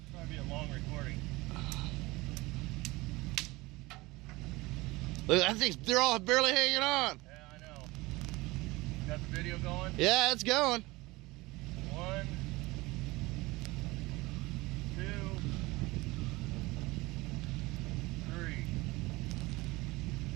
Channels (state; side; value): quieter; left; 21.7 dB